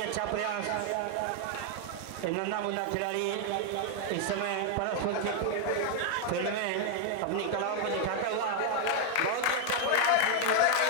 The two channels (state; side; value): different; both; correlation 0.00